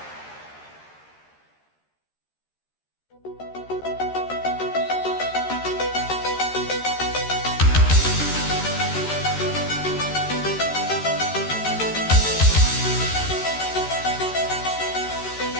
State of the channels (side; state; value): right; late; 13 ms